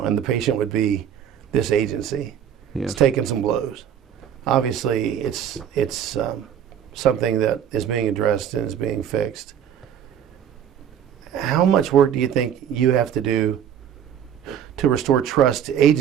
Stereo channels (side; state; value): left; quieter; 9.0 dB